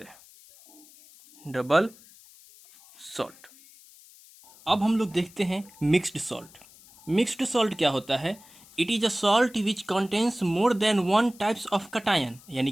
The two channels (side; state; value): left; noise; hiss, 24 dB below the sound